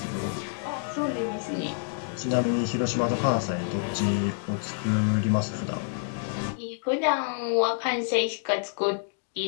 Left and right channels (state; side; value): silent; right; digital silence